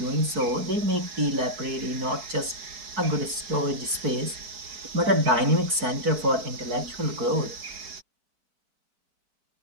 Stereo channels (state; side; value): late; left; 4.6 ms